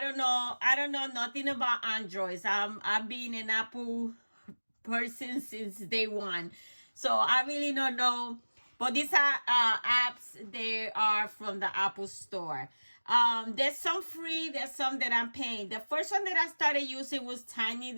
don't know nothing about Androids. I've been an Apple person since day one, so I really don't know. But these are apps. They are from the Apple Store. There's some free, there's some that I'm paying. The first one that I started using was Tiny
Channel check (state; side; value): inverted; both; correlation -1.00